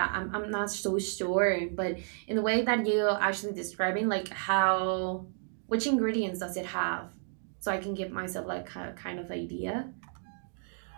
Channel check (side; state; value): left; silent; 57 dB below the other